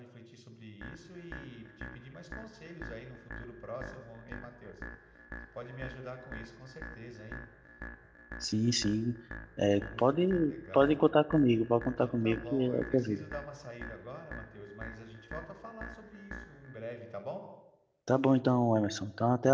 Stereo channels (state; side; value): identical; both; correlation 1.00